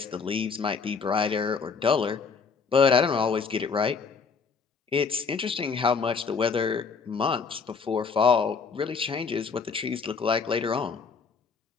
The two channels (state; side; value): quieter; right; 5.3 dB